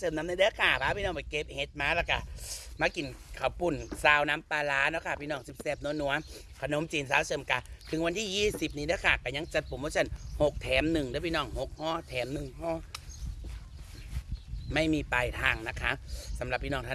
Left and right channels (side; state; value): both; identical; correlation 1.00